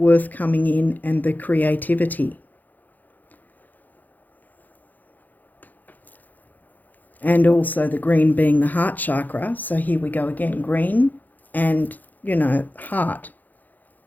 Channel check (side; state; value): right; late; 0.083 ms